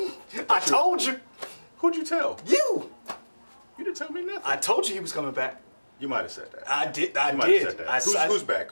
I told you. Who'd you tell? You. You didn't tell me nothing. I told you he was coming back. You might have said that. I did. You might have said that. Who's back?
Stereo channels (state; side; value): inverted; both; correlation -1.00